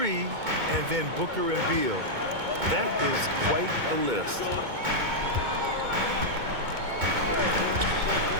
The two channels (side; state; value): left; late; 2.2 ms